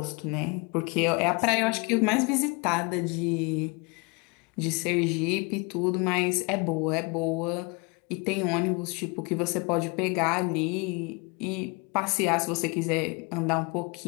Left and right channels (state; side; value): quieter; right; 30.0 dB